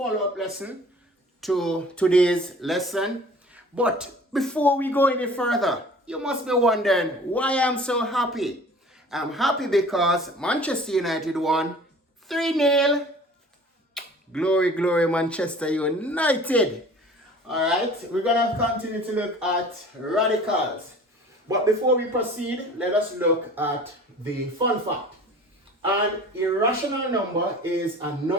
lesson to today's lesson. But before we go any further, you must be wondering why I'm so happy. I'm happy because Manchester United won 3-0. Glory, glory, Manchester United. Alright, we're going to continue to look at radicals. But before we proceed, let us look at the fun fact. An irrational number is a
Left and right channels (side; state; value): both; normal; correlation 0.46